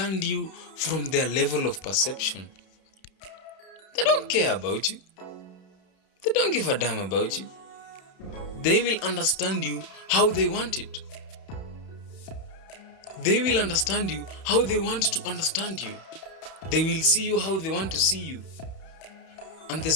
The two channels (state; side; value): late; right; 31 ms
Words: you from their level of perception. They don't care about you. They don't give a damn about you. They will understand you how they want it. They will understand you how they want to understand you. They will see you how they want to see you. And the